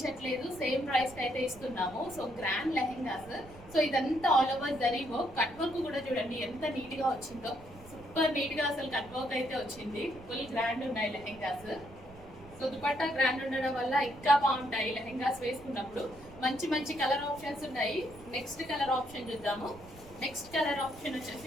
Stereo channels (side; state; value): right; noise; rumble, 20 dB below the sound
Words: సేమ్ ప్రైస్ కి అయితే ఇస్తున్నాము. So grand lehengas. సో ఇదంతా all over zari work. Cut work కూడా చూడండి ఎంత నీట్ గా వచ్చిందో, సూపర్ నీట్ గా అసలు కట్ వర్క్ అయితే వచ్చింది. ఫుల్ గ్రాండ్ ఉన్నాయి లెహెంగాస్. సో దుపట్టా గ్రాండ్ ఉండడం వల్ల ఇంకా బాగుంటాయి లెహెంగాస్ వేసుకున్నప్పుడు. మంచి మంచి కలర్ ఆప్షన్స్ ఉన్నాయి. నెక్స్ట్ కలర్ ఆప్షన్ చూద్దాము. నెక్స్ట్ కలర్ ఆప్షన్